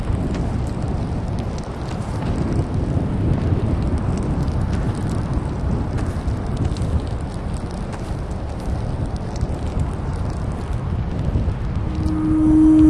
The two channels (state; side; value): identical; both; correlation 1.00